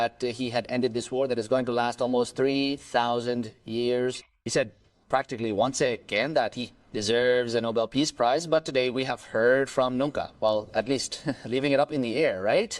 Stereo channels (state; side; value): identical; both; correlation 1.00